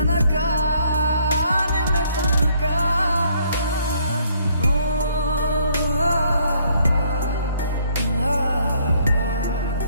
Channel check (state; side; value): inverted; both; correlation -0.66